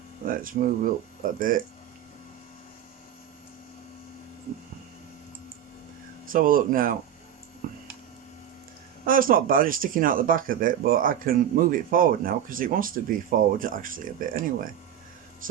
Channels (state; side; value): quieter; left; 9.9 dB